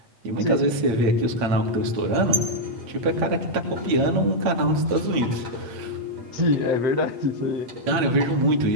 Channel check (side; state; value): left; late; 8.7 ms